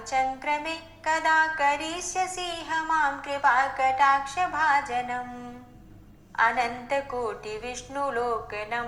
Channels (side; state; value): both; identical; correlation 1.00